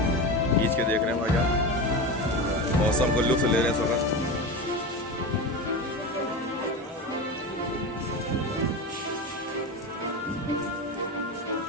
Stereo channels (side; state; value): both; normal; correlation 0.23